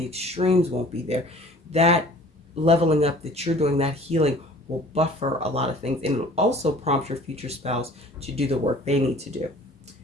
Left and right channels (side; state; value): both; normal; correlation 0.49